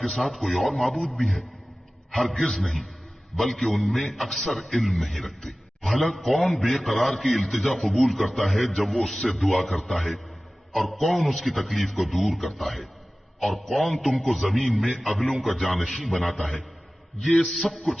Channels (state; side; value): normal; both; correlation 0.97